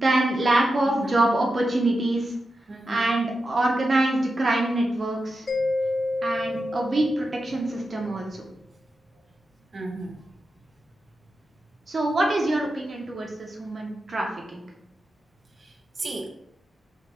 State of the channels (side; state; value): both; normal; correlation 0.90